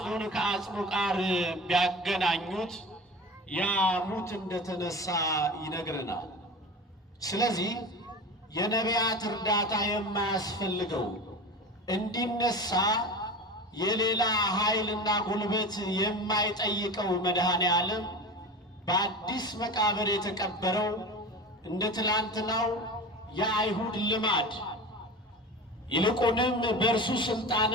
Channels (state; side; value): normal; both; correlation 0.31